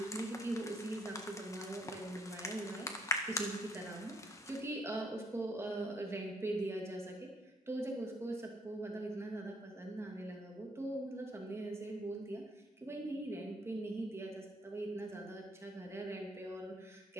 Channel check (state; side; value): normal; both; correlation 0.67